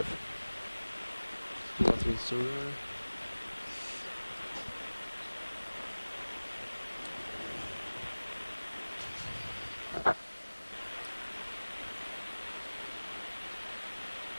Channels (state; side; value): inverted; both; correlation -1.00